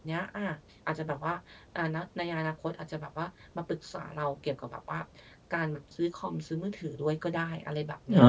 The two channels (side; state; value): both; identical; correlation 1.00